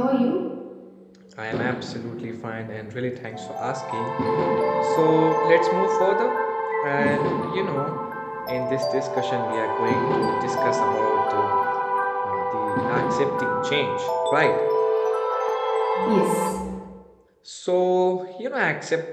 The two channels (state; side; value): identical; both; correlation 1.00